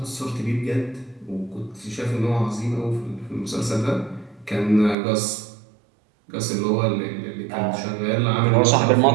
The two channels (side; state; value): left; drops out; at 5.0 s